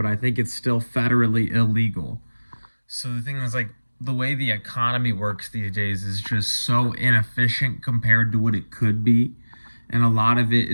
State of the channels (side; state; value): both; inverted; correlation -1.00